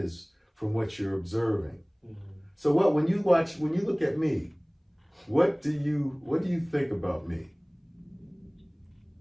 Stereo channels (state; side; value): identical; both; correlation 1.00